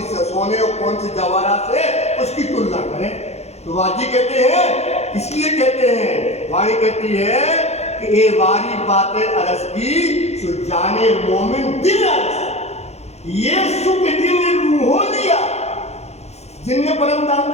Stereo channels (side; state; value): right; late; 0.31 ms